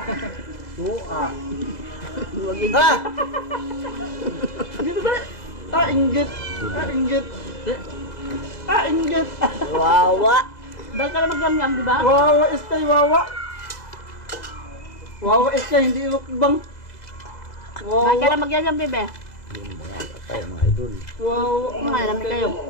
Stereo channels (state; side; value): late; right; 2.0 ms